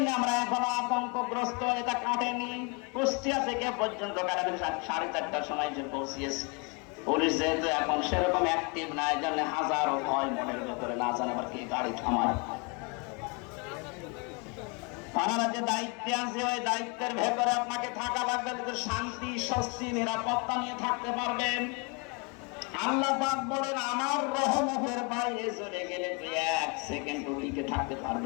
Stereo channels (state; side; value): quieter; right; 32.2 dB